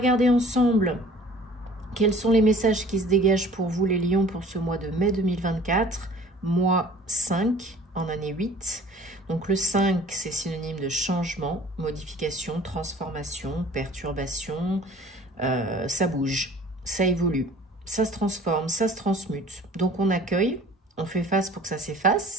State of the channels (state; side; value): normal; both; correlation 0.49